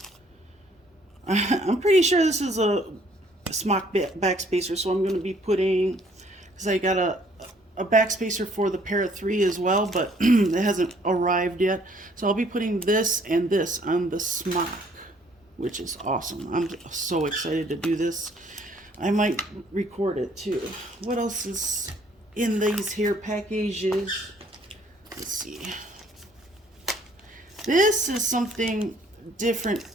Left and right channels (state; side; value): normal; both; correlation 0.62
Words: I'm pretty sure this is a smock back spacer, so I'm going to be putting, because I got a back spacer for the pair of 3 as well, but it hasn't arrived yet. So I'll be putting this and this on the smock, which is awesome. I'm so excited to do this. I might record it too. What else is in these here packages? Let's see. This is something different